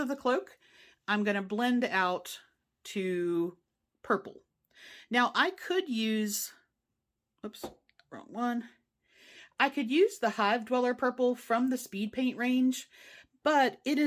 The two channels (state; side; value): identical; both; correlation 1.00